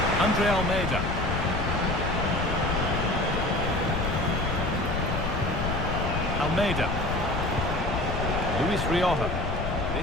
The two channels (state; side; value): noise; left; rumble, 3 dB below the sound